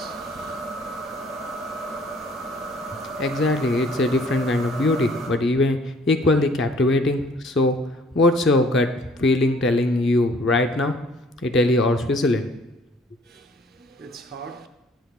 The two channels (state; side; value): normal; both; correlation 0.58